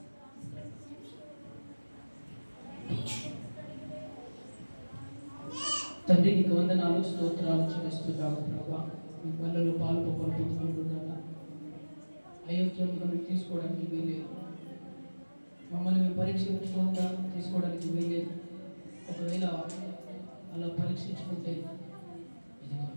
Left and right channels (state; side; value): inverted; both; correlation -1.00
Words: తండ్రి నీకు వందనాలు, స్తోత్రాలు చెల్లిస్తున్నాము ప్రభా. మీ పనులలో పాలు పొందుకుంటున్నాను. అయోగ్యంగా మీరు తీసుకోవడానికి వీలేదు. మమ్మల్ని మేము పరీక్షించుకోగా తీసుకోవడానికి వీలేదు. ఒకవేళ అలా పరీక్షించుకుంటే ఇదిగో